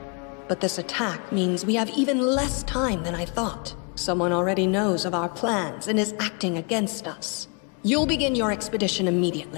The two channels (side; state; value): right; quieter; 34.7 dB